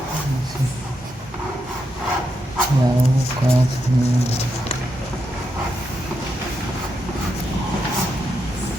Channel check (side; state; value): both; normal; correlation 0.83